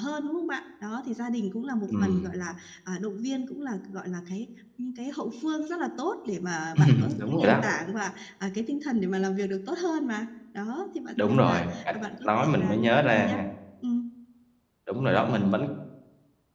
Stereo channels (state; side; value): identical; both; correlation 1.00